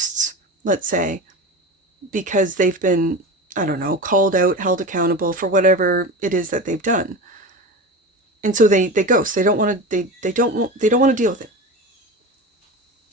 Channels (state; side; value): normal; both; correlation 0.27